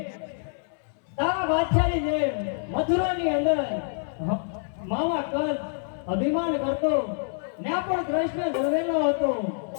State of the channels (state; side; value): silent; right; 60 dB below the other